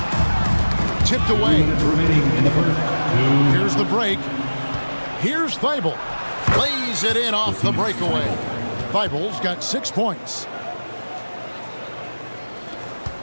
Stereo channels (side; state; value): both; inverted; correlation -1.00